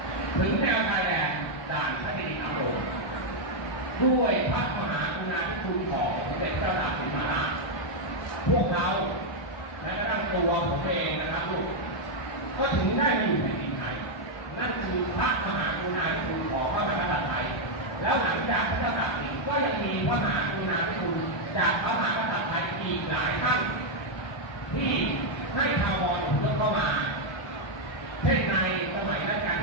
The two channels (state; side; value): late; right; 1.5 ms